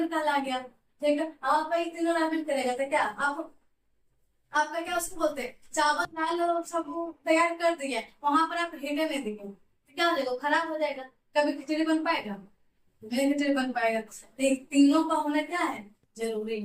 कहला गया, ठीक है। आप तीनों रामेन करेगा तो क्या आपका क्या उसको बोलते हैं, चावल दाल सब तैयार कर दिए, वहां पर आप हीटे नहीं दिए तो क्या हो जाएगा, खराब हो जाएगा, कभी खिचड़ी बन पाएगा, नहीं खिचड़ी बन पाएगा। तीनों का होना क्या है, जरूरी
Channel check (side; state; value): both; identical; correlation 1.00